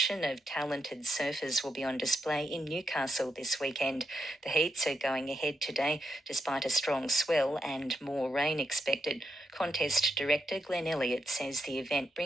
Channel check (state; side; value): normal; both; correlation 0.82